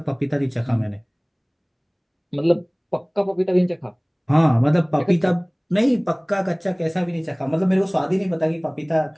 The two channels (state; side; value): identical; both; correlation 1.00